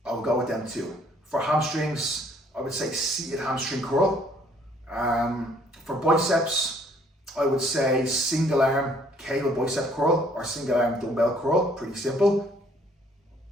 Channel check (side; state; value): both; normal; correlation 0.61